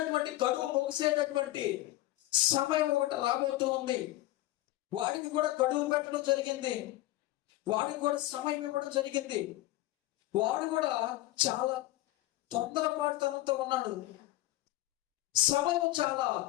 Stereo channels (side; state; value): right; quieter; 16.6 dB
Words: గడువు ముగిసేటటువంటి సమయం ఒకటి రాబోతూ ఉంది. వాడికి కూడా గడువు పెట్టడం జరిగింది, వాడికి కూడా సమయం ఇవ్వడం జరిగింది. వాడు కూడా చాలా తొందరపాటుతనంతో ఉన్నాడు. సమయం చాలా